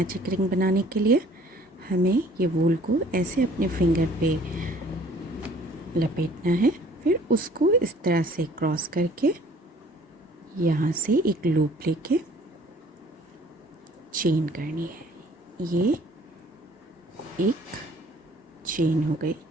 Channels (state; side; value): normal; both; correlation 0.55